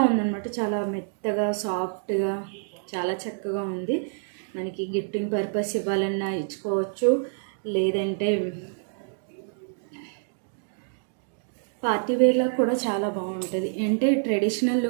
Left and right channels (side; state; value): left; silent; digital silence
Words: ఉందన్నమాట. చాలా మెత్తగా సాఫ్ట్గా చాలా చక్కగా ఉంది. మనకి గిఫ్టింగ్ పర్పస్ ఇవ్వాలన్నా ఇచ్చుకోవచ్చు, లేదంటే పార్టీ వేర్లో కూడా చాలా బాగుంటుంది. అంటే ట్రెడిషనల్